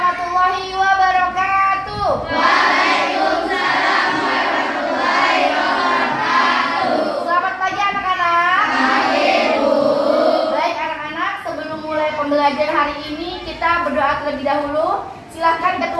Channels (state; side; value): identical; both; correlation 1.00